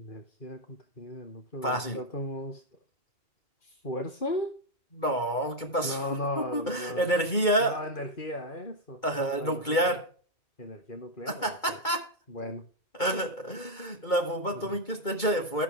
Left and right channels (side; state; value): right; late; 2.2 ms